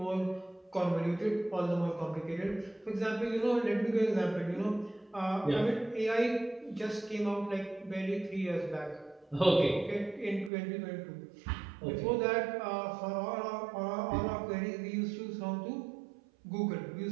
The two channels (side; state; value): left; drops out; at 10.5 s